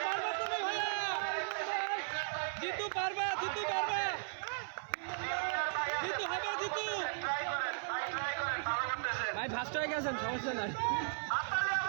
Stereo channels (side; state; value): left; silent; 53 dB below the other